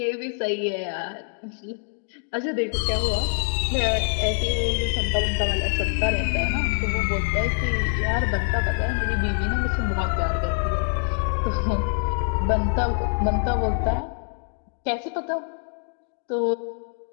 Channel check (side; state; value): right; silent; 58 dB below the other